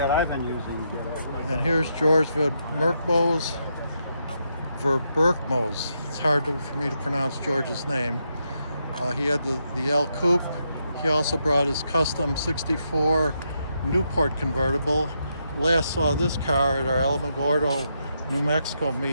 I've been using. And here's George Vermerkmos. It's hard for me to pronounce George's name. He had the L Coupe. He also brought his custom 64 Newport convertible. Last saw this car at our Alamogordo, New Mexico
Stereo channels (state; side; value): inverted; both; correlation -0.80